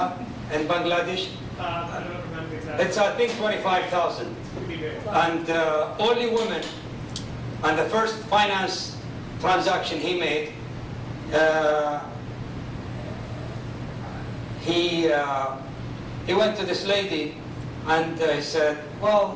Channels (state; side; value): identical; both; correlation 1.00